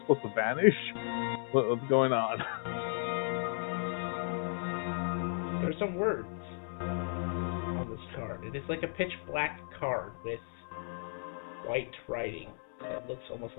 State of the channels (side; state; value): right; silent; digital silence